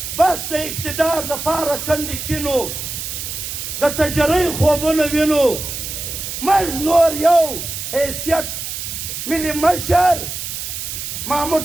بس د اقتدار دپاره کندې کینو د تجرۍ خوبونه وینو موږ نور یو حیثیت ملي مشر محمود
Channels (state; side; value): noise; right; hiss, 6 dB below the sound